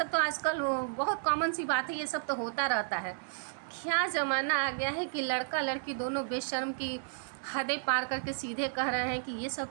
तो आजकल बहुत कॉमन सी बात है, ये सब तो होता रहता है। क्या ज़माना आ गया है कि लड़का लड़की दोनों बेशर्म की हदें पार करके सीधे कह रहे हैं कि ये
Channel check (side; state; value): left; silent; 56 dB below the other